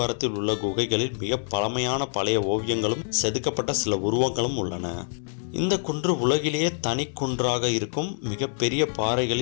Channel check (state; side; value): silent; right; digital silence